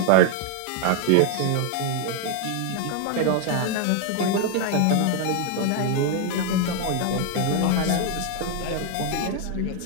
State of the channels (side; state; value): both; different; correlation 0.01